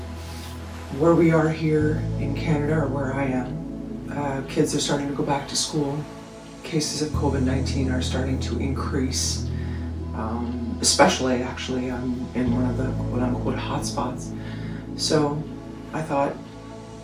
Where we are here in Canada, or where I am, kids are starting to go back to school. Cases of COVID-19 are starting to increase, especially actually I'm in one of the quote-unquote hotspots. So I thought,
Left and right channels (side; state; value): both; identical; correlation 1.00